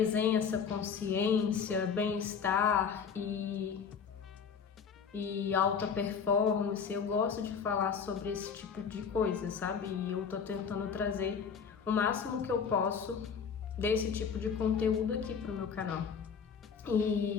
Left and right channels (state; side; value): quieter; right; 6.4 dB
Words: consciência, bem-estar e alta performance. Eu gosto de falar sobre esse tipo de coisa, sabe? E eu tô tentando trazer o máximo que eu posso desse tipo de conteúdo aqui pro meu canal.